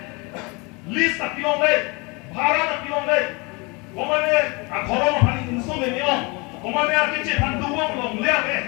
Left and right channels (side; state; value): right; quieter; 28.2 dB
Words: list tak pilong le, bharat tak pilong le, komane akhoro mahani insu memang. Komane arkice panduang long le ave